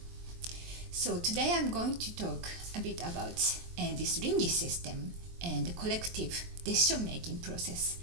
So today I'm going to talk a bit about this RINGI system and the collective decision-making process.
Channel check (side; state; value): left; late; 23 ms